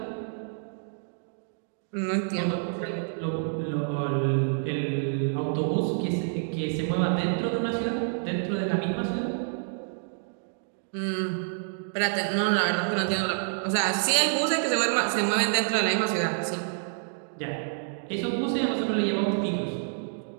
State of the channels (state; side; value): silent; left; digital silence